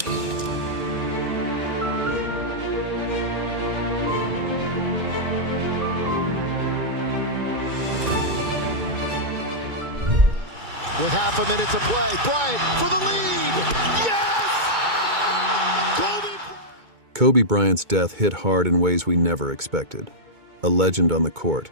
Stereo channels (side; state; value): left; late; 2.2 ms